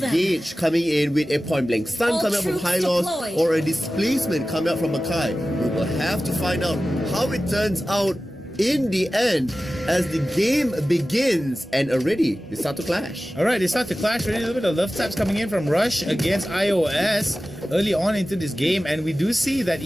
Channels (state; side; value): normal; both; correlation 0.95